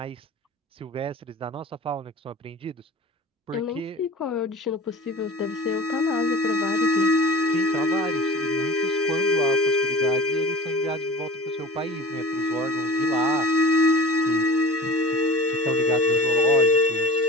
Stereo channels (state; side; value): normal; both; correlation 0.36